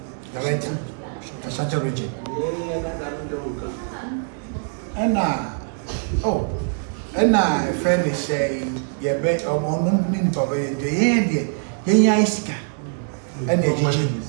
director Ashanti region ana friend say ye be ono nipa ba ye de yenya isika ana ejiji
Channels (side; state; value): left; silent; 59 dB below the other